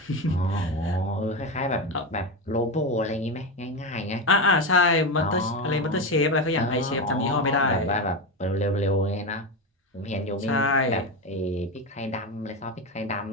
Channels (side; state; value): both; normal; correlation 0.16